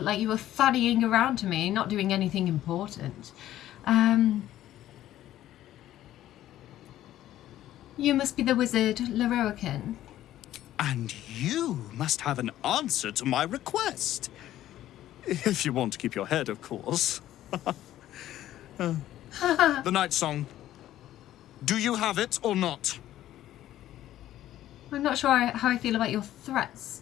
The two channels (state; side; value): quieter; right; 13.2 dB